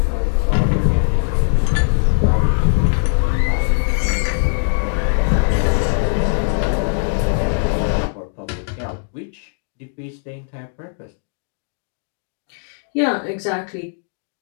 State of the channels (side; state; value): right; silent; digital silence